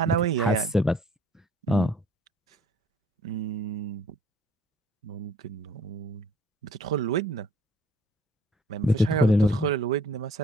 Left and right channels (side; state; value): both; normal; correlation 0.57